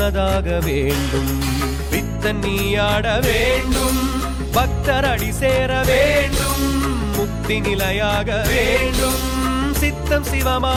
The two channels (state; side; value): identical; both; correlation 1.00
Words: வேண்டும். பித்தன் நீயாட வேண்டும், பக்தர் அடி சேர வேண்டும். முக்தி நிலையாக வேண்டும், சித்தம்